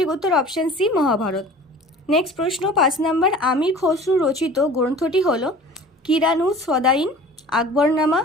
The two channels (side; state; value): both; normal; correlation 0.43